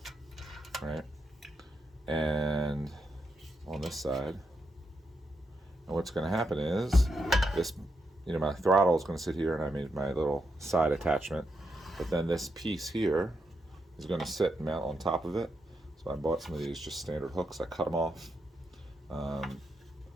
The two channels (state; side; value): normal; both; correlation 0.84